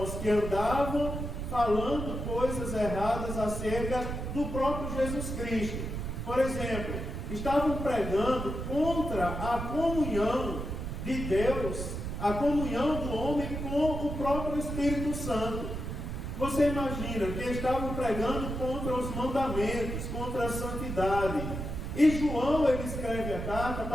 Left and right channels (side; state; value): right; noise; rumble, 5 dB below the sound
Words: que andavam falando coisas erradas acerca do próprio Jesus Cristo. Por exemplo, estavam pregando contra a comunhão de Deus, a comunhão do homem com o próprio Espírito Santo. Você imagina que estavam pregando contra os mandamentos, contra a santidade. E João, ele escreve a carta